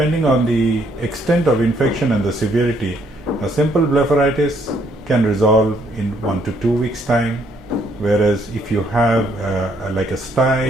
on the extent of infection and the severity, a simple blepharitis can resolve in 1 to 2 weeks time, whereas if you have like a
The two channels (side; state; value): both; normal; correlation 0.69